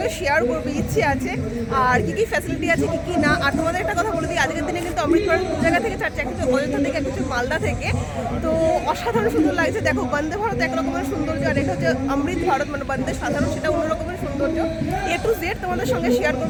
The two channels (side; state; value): both; identical; correlation 1.00